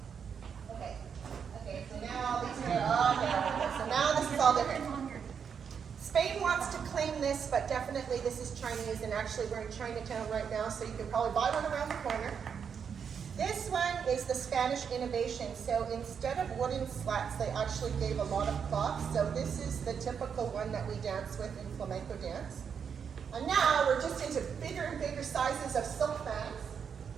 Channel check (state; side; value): quieter; left; 7.0 dB